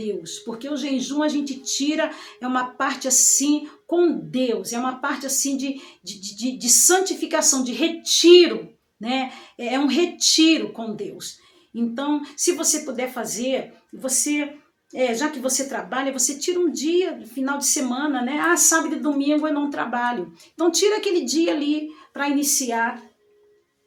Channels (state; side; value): identical; both; correlation 1.00